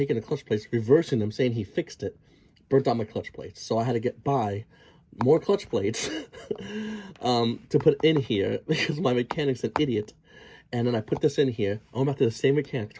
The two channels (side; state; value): both; identical; correlation 1.00